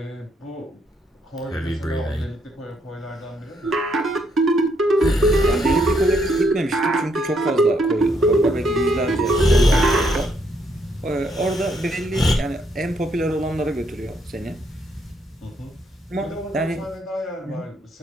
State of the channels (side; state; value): both; normal; correlation 0.73